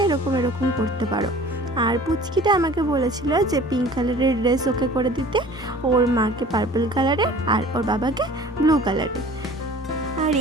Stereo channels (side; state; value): both; normal; correlation 0.46